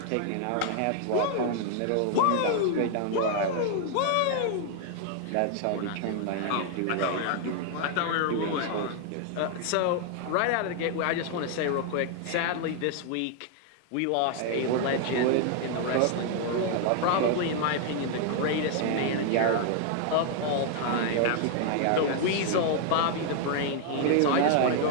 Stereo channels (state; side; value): different; both; correlation 0.00